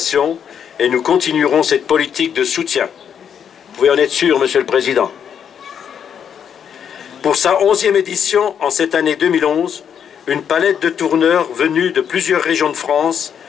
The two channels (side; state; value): right; quieter; 8.1 dB